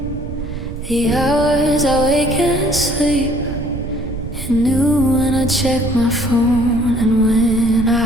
the hours I wake and sleep. You knew when I check my phone and when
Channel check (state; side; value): noise; right; rumble, 8 dB below the sound